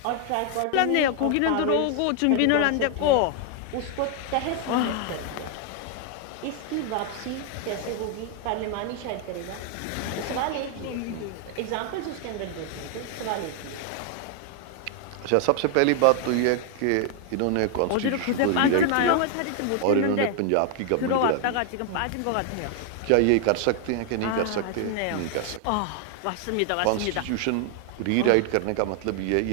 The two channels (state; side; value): different; both; correlation 0.00